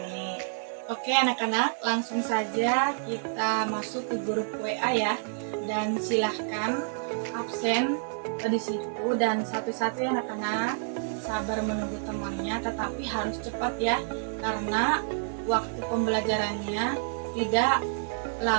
Oke anak-anak, langsung saja kita masuk ke grup WA ya. Dan silahkan absen di situ, dan satu-satu ya anak-anak, sabar menunggu temannya, tetapi harus cepat ya, karena waktu pembelajarannya tidak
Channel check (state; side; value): silent; left; digital silence